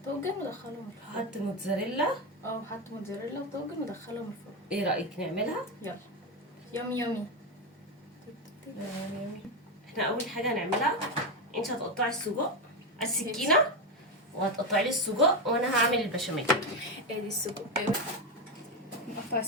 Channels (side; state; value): both; normal; correlation 0.11